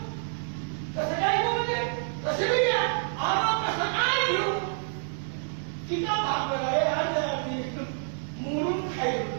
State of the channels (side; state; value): left; silent; 58 dB below the other